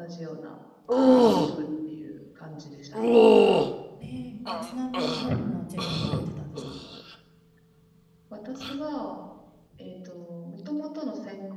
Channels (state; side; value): identical; both; correlation 1.00